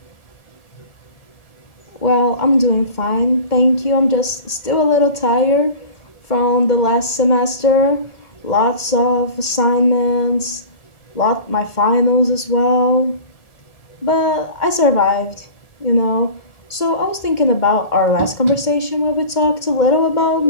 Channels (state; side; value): late; right; 2.1 ms